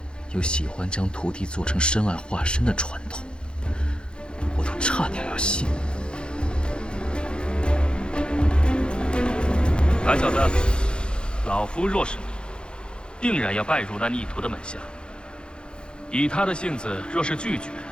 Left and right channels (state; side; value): late; right; 0.052 ms